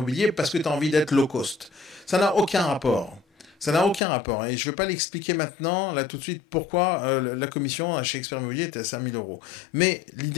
parce que tu as envie d'être low cost. Ça n'a aucun rapport. Ça n'a aucun rapport. Et je ne vais pas l'expliquer maintenant, là tout de suite, pourquoi la commission chez Expert Immobilier est à 5 000 euros. Mais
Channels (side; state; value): right; drops out; at 4.0 s